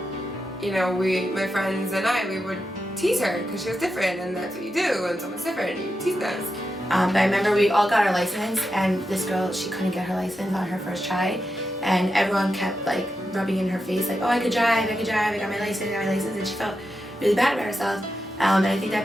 you know, my friends and we would tease her because she was different, and that's what you do when someone's different, you tease them. But I remember we all got our license, and this girl, she couldn't get her license on her first try, and everyone kept like rubbing in her face like, oh, I could drive, I got my license, and she felt really bad about herself. And I think that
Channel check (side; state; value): both; normal; correlation 0.88